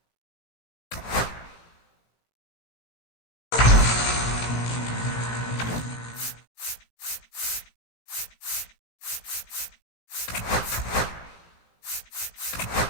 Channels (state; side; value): late; right; 17 ms